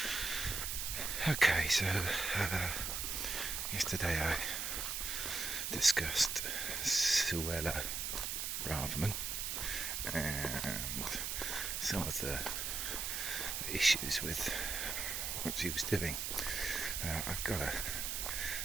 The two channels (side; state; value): right; noise; hiss, 2 dB below the sound